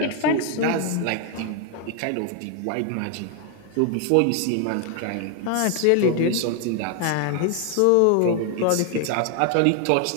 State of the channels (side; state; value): both; different; correlation 0.00